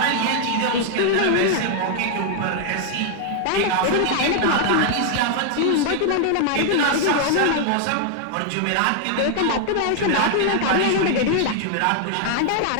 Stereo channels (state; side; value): different; both; correlation 0.00